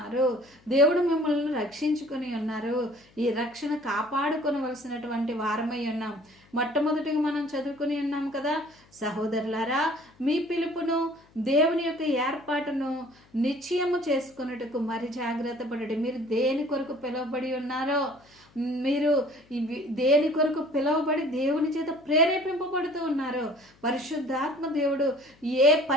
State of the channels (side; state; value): left; noise; hum, 30 dB below the sound